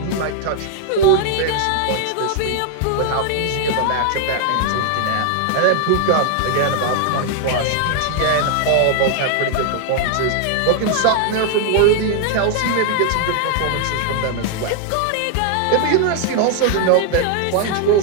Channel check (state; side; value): different; both; correlation 0.00